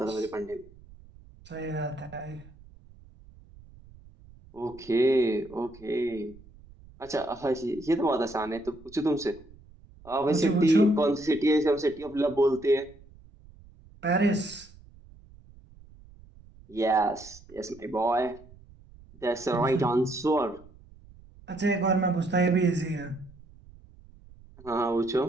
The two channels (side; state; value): right; noise; rumble, 23 dB below the sound